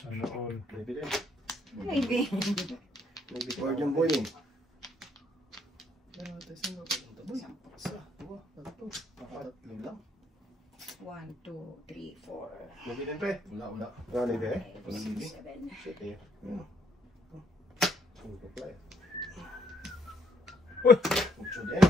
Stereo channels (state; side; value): normal; both; correlation 0.69